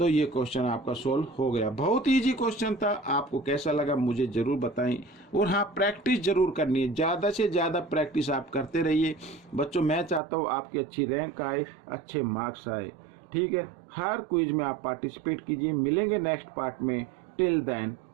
ये क्वेश्चन आपका सोल्व हो गया। बहुत इजी क्वेश्चन था। आपको कैसा लगा मुझे ज़रूर बताएं। और हाँ, प्रैक्टिस ज़रूर करनी है, ज़्यादा से ज़्यादा प्रैक्टिस आप करते रहिए बच्चों। मैं चाहता हूँ आपकी अच्छी रैंक आए, अच्छे मार्क्स आए। ठीक है, हर क्विज में आप पार्टिसिपेट कीजिए। मिलेंगे नेक्स्ट पार्ट में। Till then,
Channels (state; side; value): drops out; left; at 10.2 s